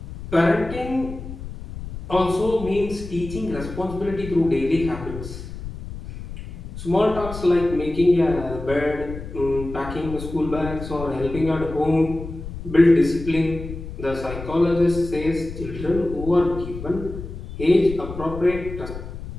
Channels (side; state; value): left; noise; rumble, 10 dB below the sound